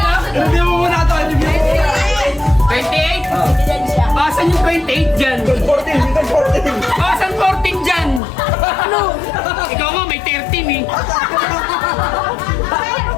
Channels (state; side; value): drops out; right; at 8.2 s